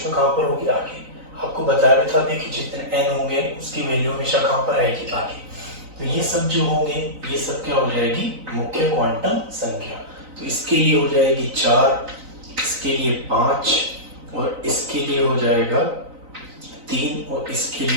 में कहां पर होगी, आगे। आपको बताया भी था अभी कि जितने n होंगे उसकी वैल्यू हमेशा कहां पर आएगी, आगे। तो ये सब जो होंगे ये सब क्या हो जाएगी, मुख्य क्वांटम संख्या। तो इसके लिए हो जाएगी 4, इसके लिए 5, और इसके लिए हो जाएगा 3, और इसके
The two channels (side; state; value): left; late; 3.9 ms